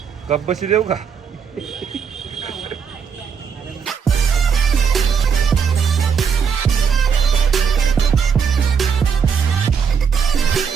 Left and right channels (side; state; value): left; quieter; 6.6 dB